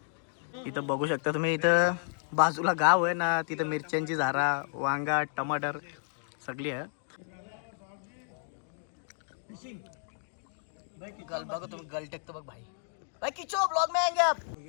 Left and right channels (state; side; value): silent; right; digital silence